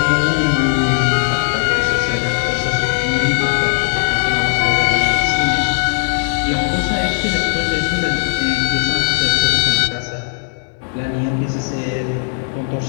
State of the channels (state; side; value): silent; right; 68 dB below the other